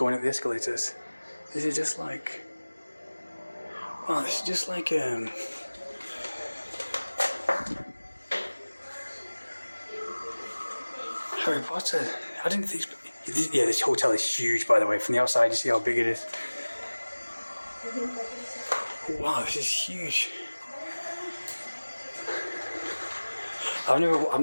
up the escalators. This is just like, wow, this is just like Harry Potter. I didn't think. Yeah, this hotel is huge, by the way. From the outside, you see how big it is. Wow, this is huge. I'm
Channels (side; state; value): both; inverted; correlation -1.00